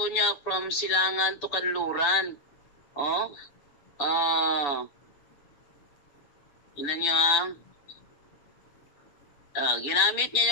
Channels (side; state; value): right; late; 7.0 ms